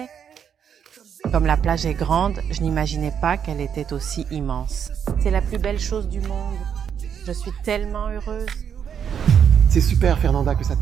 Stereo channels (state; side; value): quieter; left; 8.0 dB